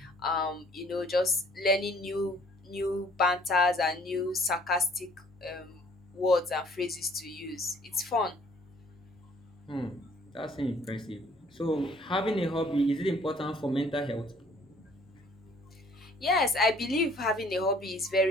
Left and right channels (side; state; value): both; normal; correlation 0.58